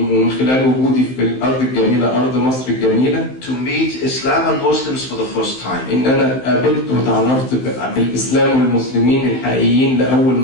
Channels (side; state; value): right; late; 15 ms